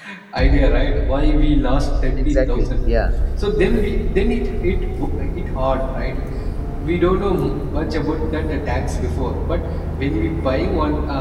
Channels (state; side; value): identical; both; correlation 1.00